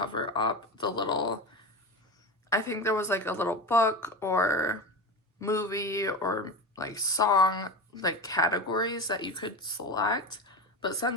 up the little, I think there was like a little book or movie or like song like categories that you could select, but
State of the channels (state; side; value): normal; both; correlation 0.24